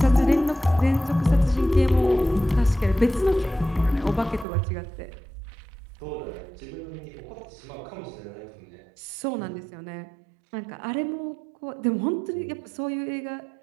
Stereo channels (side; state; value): left; drops out; at 4.5 s